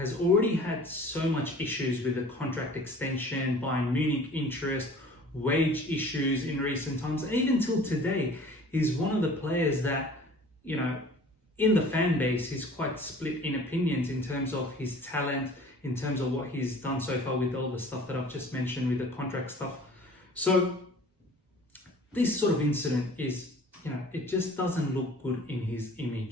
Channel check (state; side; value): normal; both; correlation 0.47